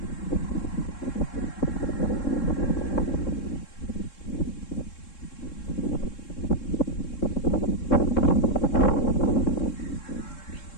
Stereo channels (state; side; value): late; right; 3.7 ms